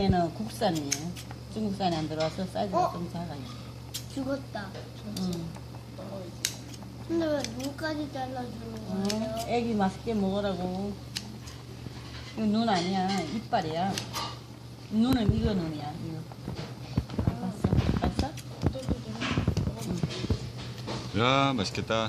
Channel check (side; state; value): both; identical; correlation 1.00